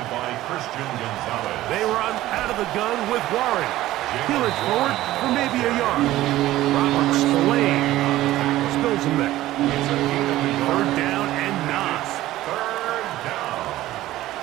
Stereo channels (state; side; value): quieter; left; 15.5 dB